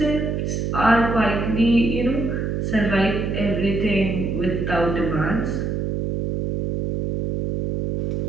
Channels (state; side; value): noise; right; hum, 1 dB below the sound